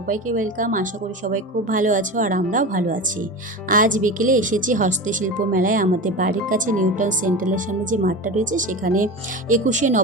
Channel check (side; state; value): both; normal; correlation 0.27